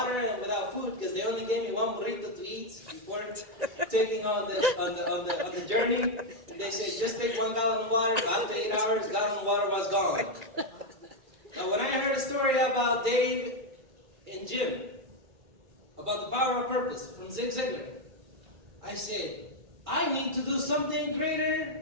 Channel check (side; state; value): left; late; 2.3 ms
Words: and without food because they only gave me 1 burrito to eat before taking on the journey. And they said, just take 1 gallon of water. After 8 hours, gallon of water was gone. Now, when I heard a story about Dave and Jim, about the power of purpose from Zig Ziglar, I said, I need to do something